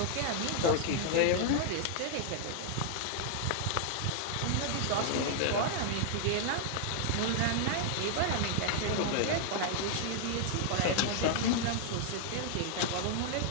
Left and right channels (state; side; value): different; both; correlation 0.00